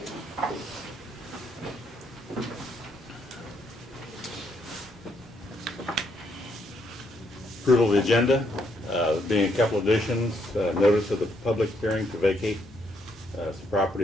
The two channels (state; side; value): normal; both; correlation 0.73